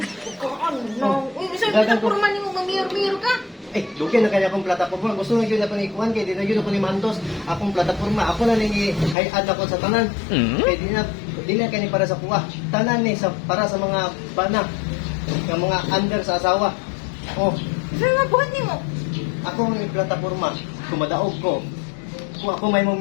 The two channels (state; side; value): drops out; right; at 9.2 s